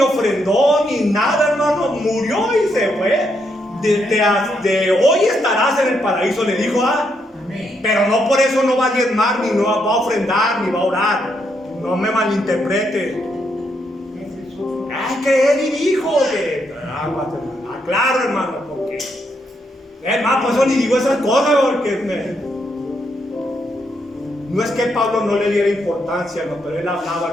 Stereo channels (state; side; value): normal; both; correlation 0.78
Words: ofrendó, ni nada, hermano. Murió y se fue. De hoy estarás en el paraíso, le dijo. Pero no por eso no va a diezmar, ni no va a ofrendar, ni va a orar. No me malinterprete. Ay, que él dijo que claro, hermano, porque es más, por eso ni digo esas cosas, porque no es que Pablo no le diera importancia, no, pero él hablaba,